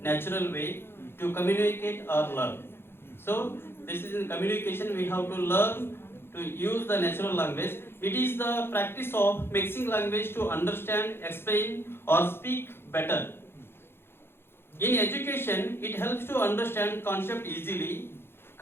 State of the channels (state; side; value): late; right; 0.11 ms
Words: natural way to communicate or learn. So this is in communication we have to learn to use the natural language. It is the practice of mixing language to understand, explain or speak better. In education, it helps to understand concept easily,